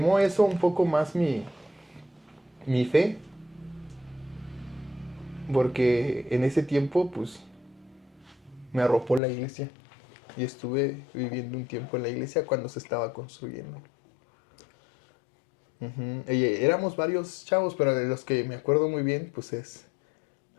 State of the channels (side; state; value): right; drops out; at 9.2 s